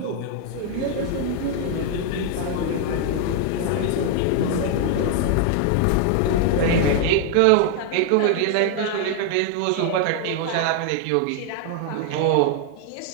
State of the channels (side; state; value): both; different; correlation 0.00